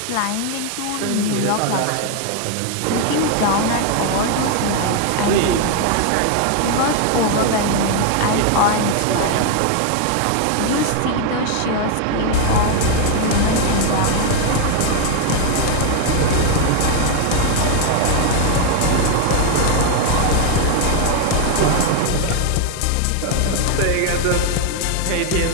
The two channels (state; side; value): different; both; correlation 0.01